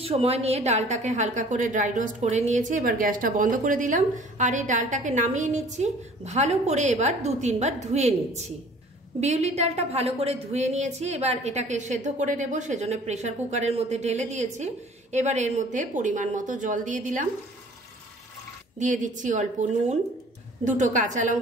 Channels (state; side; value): normal; both; correlation 0.51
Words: সময় নিয়ে ডালটাকে হালকা করে ড্রাই রোস্ট করে নিয়েছি। এবার গ্যাসটা বন্ধ করে দিলাম আর এই ডালটাকে নামিয়ে নিচ্ছি। ভালো করে এবার 2-3 বার ধুয়ে নিচ্ছি। বিউলির ডালটা ভালো করে ধুয়ে নিয়েছি। এবার এটাকে সেদ্ধ করে নেব, সেজন্য প্রেসার কুকারের মধ্যে ঢেলে দিয়েছি। এবার এর মধ্যে পরিমাণ মতো জল দিয়ে দিলাম, দিয়ে দিচ্ছি অল্প নুন, 2টো কাঁচা